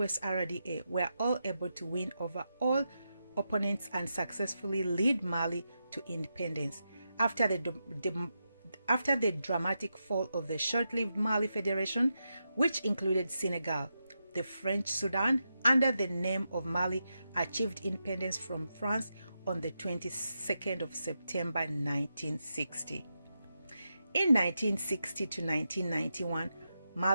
RDA were all able to win over all opponents and successfully lead Mali to independence. After the dramatic fall of the short-lived Mali Federation, which included Senegal, the French Sudan, under the name of Mali, achieved independence from France on the 22nd of September 1960. In 1960 to 1991,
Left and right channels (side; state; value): both; inverted; correlation -0.86